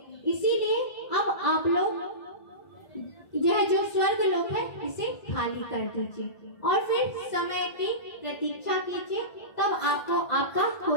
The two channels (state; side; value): late; right; 1.5 ms